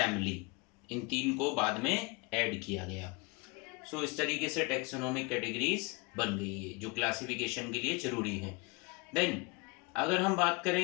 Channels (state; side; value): quieter; right; 29.1 dB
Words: इन 3 को बाद में ऐड किया गया। इस तरीके से टैक्सोनॉमिक कैटेगरीज बन गई है जो क्लासिफिकेशन के लिए जरूरी है। देन अगर हम बात